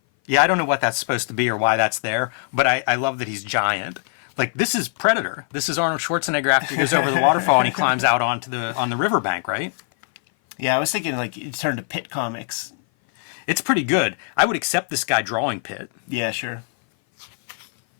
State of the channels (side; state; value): right; silent; 57 dB below the other